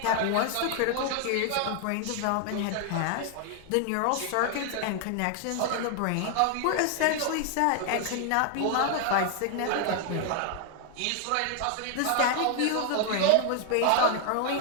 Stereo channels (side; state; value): both; different; correlation 0.00